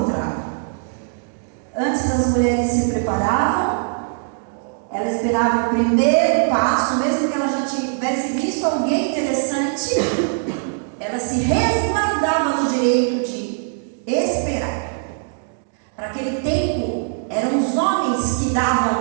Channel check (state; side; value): silent; left; digital silence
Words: Antes as mulheres se preparavam, ela esperava o primeiro passo, mesmo que ela já tivesse visto alguém interessante, ela se resguardava no direito de esperar. Para aquele tempo, eram os homens que